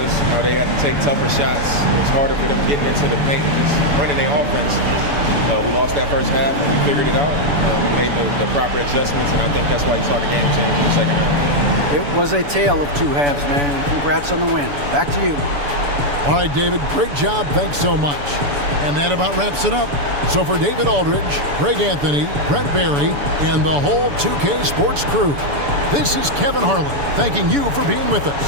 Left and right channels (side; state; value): left; late; 7.0 ms